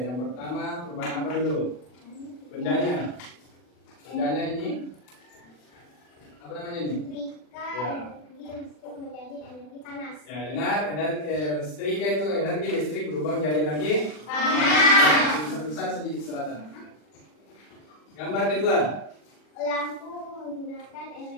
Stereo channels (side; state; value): right; late; 40 ms